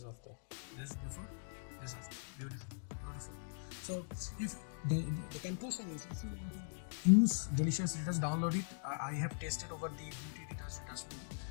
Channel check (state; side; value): silent; right; digital silence